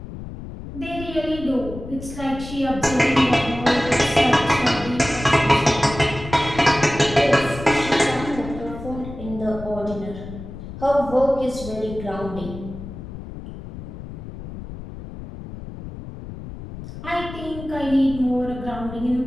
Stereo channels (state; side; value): noise; left; rumble, 11 dB below the sound